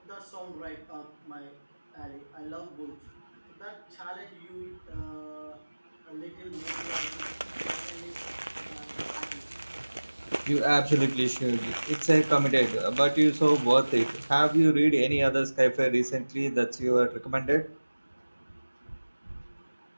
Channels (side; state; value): both; inverted; correlation -1.00